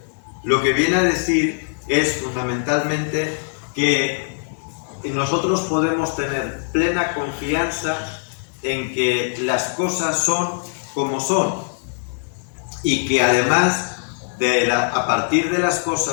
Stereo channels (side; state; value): right; silent; digital silence